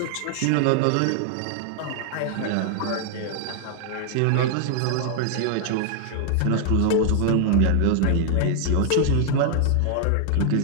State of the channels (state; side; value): different; both; correlation 0.00